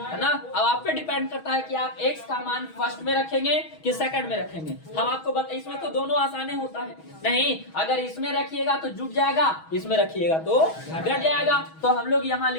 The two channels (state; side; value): late; right; 6.3 ms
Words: ना। अब आप पे डिपेंड करता है कि आप x का मान फर्स्ट में रखेंगे कि सेकंड में रखेंगे। हम आपको बता, इसमें तो दोनों आसानी होता है, नहीं, अगर इसमें रखिएगा तो जुट जाएगा, इसमें रखिएगा तो घट जाएगा। तो हम लोग यहाँ